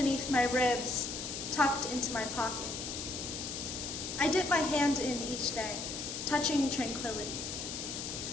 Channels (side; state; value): left; noise; hiss, 5 dB below the sound